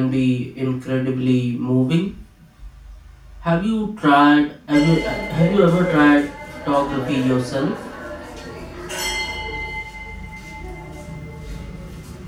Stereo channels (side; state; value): both; identical; correlation 1.00